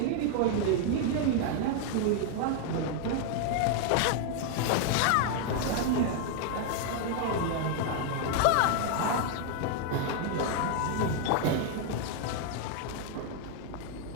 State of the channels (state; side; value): different; both; correlation 0.00